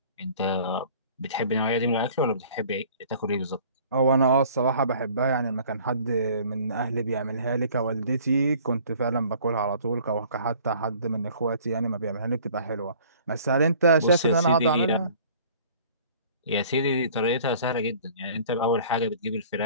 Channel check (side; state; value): both; inverted; correlation -0.51